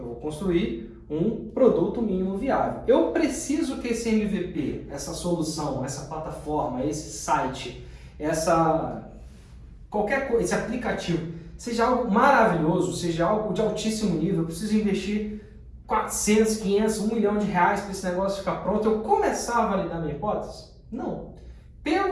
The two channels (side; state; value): both; identical; correlation 1.00